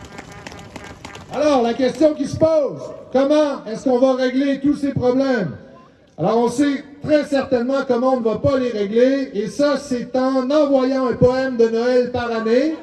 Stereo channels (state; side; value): identical; both; correlation 1.00